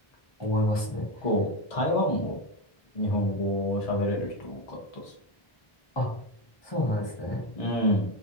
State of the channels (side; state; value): right; late; 1.2 ms